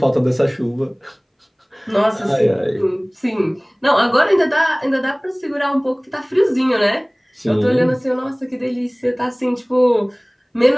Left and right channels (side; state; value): both; identical; correlation 1.00